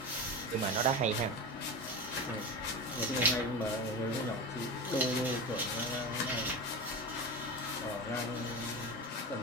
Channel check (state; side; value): normal; both; correlation 0.24